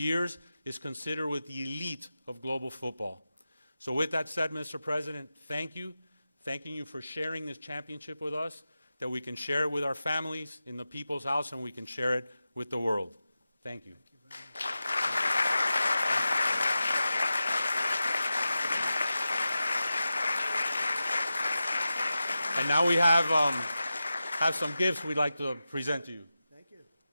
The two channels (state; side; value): inverted; both; correlation -0.93